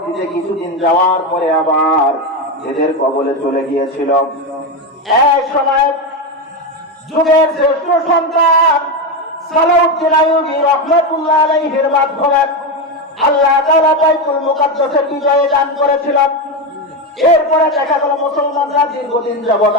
কিছুদিন যাওয়ার পরে আবার এদের কবলে চলে গিয়েছিল। এক সময় যুগের শ্রেষ্ঠ সন্তান সালাউদ্দিন আইয়ুবী রাহমাতুল্লাহ আলাইহির মাধ্যমে আল্লাহ তাআলা বাইতুল মুকাদ্দাসের বিজয় দান করেছিলেন। এরপরে দেখা গেল মুসলমানরা দীর্ঘদিন যাবৎ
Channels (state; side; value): normal; both; correlation 0.12